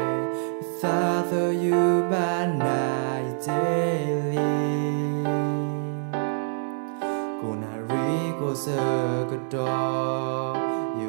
xa thơ như ban nai daily cô nà rí cô sơ cơ đo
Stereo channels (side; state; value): left; silent; 61 dB below the other